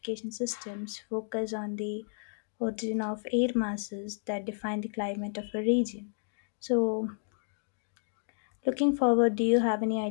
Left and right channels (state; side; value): silent; right; digital silence